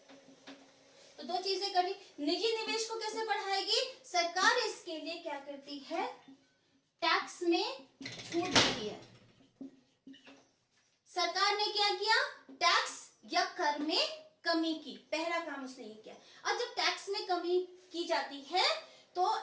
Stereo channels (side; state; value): both; identical; correlation 1.00